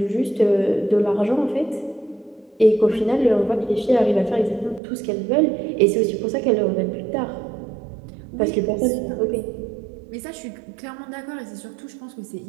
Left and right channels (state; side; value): drops out; left; at 4.8 s